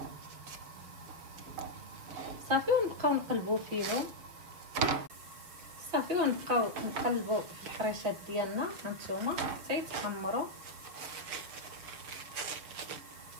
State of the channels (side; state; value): left; late; 6.4 ms